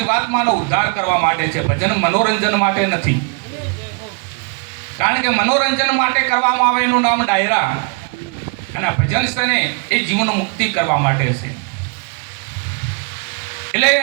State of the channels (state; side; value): quieter; left; 36.0 dB